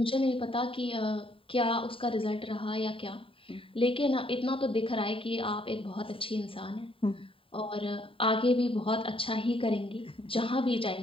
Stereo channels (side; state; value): right; late; 0.26 ms